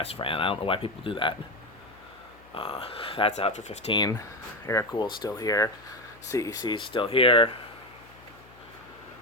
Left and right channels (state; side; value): noise; left; hum, 24 dB below the sound